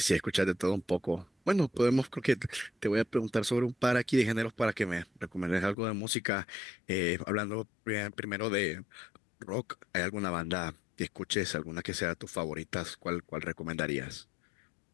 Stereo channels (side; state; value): right; drops out; at 5.8 s